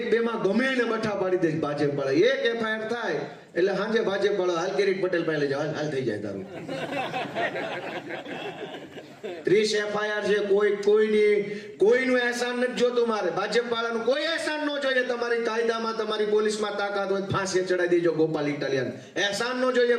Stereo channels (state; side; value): identical; both; correlation 1.00